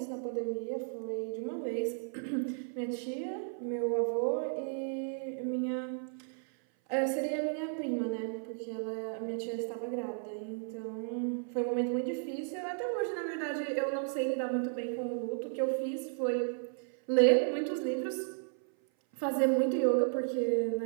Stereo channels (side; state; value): left; silent; 55 dB below the other